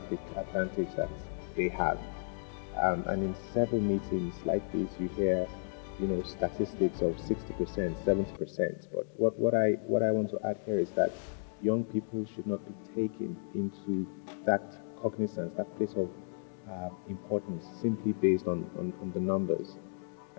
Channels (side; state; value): right; silent; digital silence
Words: advantage that they have. And in several meetings like this, you hear statistics of 60%, 70%. But what I want to add here is that young people should not be taken into that cognizance, that place of importance, simply based on the numbers.